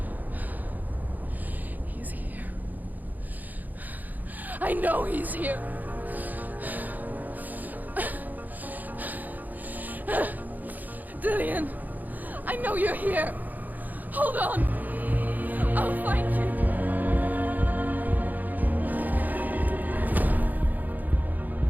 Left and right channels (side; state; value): left; late; 0.083 ms